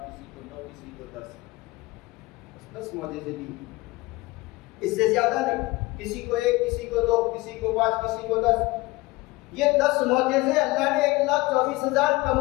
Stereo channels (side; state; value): right; quieter; 21.4 dB